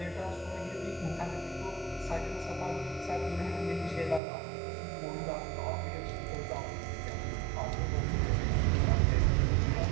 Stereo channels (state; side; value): drops out; left; at 4.2 s